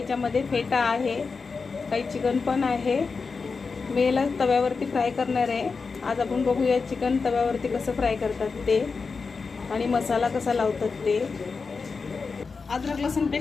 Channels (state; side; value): quieter; right; 4.7 dB